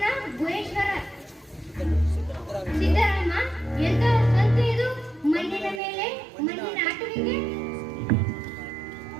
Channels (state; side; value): drops out; left; at 5.8 s